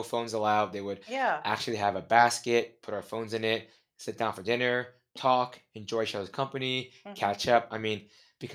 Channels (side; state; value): both; identical; correlation 1.00